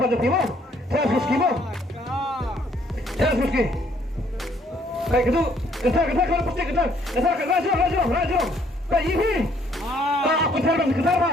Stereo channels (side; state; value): both; normal; correlation 0.65